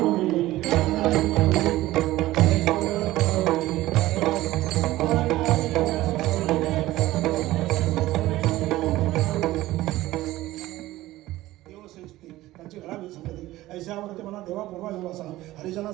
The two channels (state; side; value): quieter; left; 16.7 dB